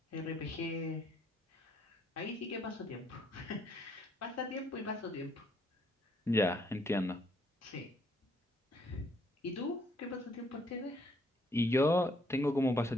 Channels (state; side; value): normal; both; correlation 0.68